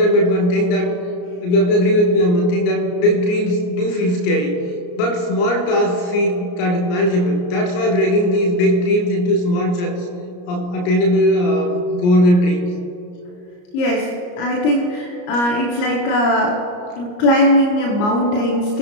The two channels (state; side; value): late; right; 34 ms